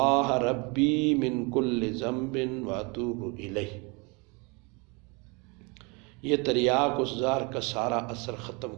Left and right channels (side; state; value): left; quieter; 29.6 dB